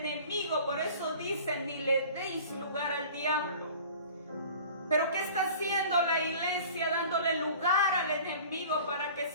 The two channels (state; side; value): inverted; both; correlation -0.44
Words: Por eso dicen, ni le deis lugar al diablo. Pero ¿qué está haciendo la iglesia? Dándole lugar al enemigo para que